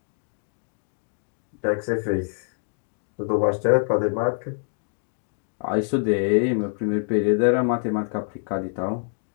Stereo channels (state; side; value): silent; right; digital silence